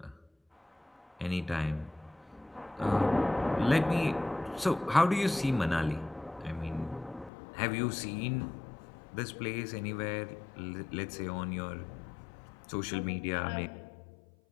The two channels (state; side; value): drops out; right; at 7.3 s